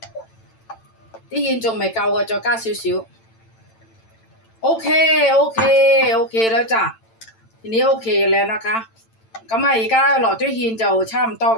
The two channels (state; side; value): late; right; 8.9 ms